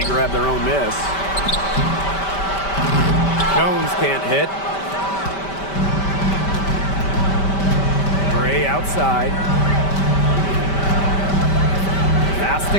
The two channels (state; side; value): late; right; 5.1 ms